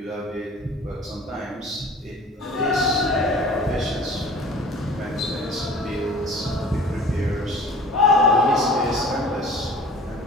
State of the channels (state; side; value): normal; both; correlation 0.44